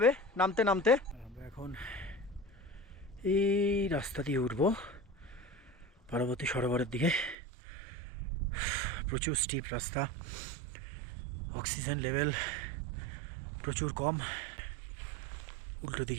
নামতে নামতে। আমরা এখন এই রাস্তা দিয়ে উঠবো পার্বতী সরোবরের দিকে। প্রচুর স্টিপ রাস্তা, অক্সিজেন লেভেল প্রচুর কম। উল্টো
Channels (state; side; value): drops out; left; at 7.4 s